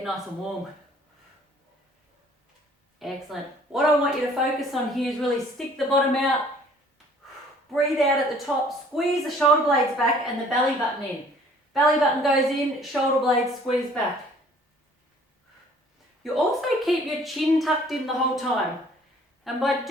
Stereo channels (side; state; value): both; normal; correlation 0.56